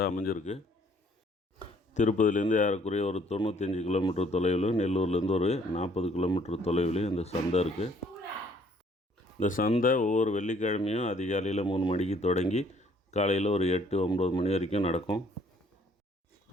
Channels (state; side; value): normal; both; correlation 0.61